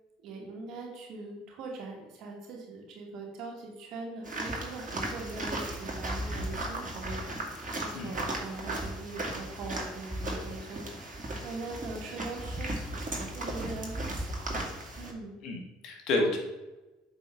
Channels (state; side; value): normal; both; correlation 0.53